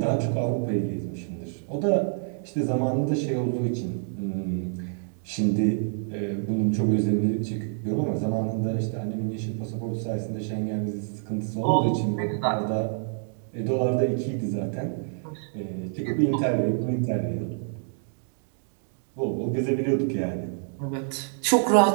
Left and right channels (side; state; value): left; silent; 60 dB below the other